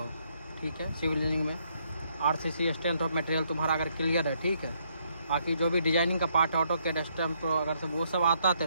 ठीक है, सिविल इंजीनियरिंग में आरसीसी स्ट्रेंथ ऑफ मटेरियल तुम्हारा अगर क्लियर है, ठीक है, बाकी जो भी डिजाइनिंग का पार्ट है, ऑटो कैड स्टैम्प, तो अगर सब वो सब आता है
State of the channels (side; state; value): both; inverted; correlation -0.72